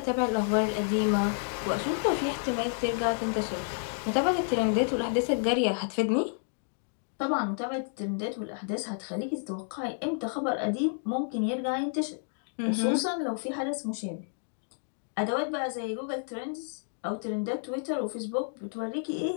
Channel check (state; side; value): silent; right; digital silence